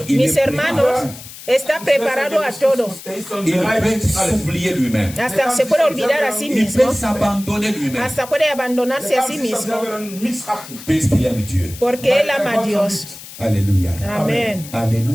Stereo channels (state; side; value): noise; left; hiss, 15 dB below the sound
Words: il mis est hermanos, está preparado a todo. Il peut s'oublier lui-même. Hasta se puede olvidar a sí Il mismo. peut s'abandonner lui-même. Hasta puede abandonarse a sí mismo. Puisqu'il aime Dieu. Porque él ama a Dios. Alléluia. Amén.